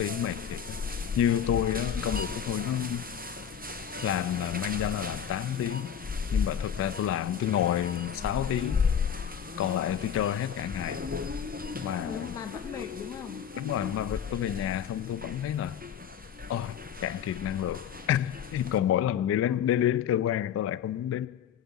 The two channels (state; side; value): quieter; right; 8.7 dB